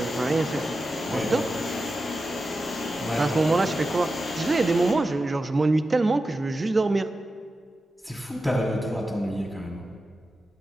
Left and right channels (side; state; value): both; normal; correlation 0.92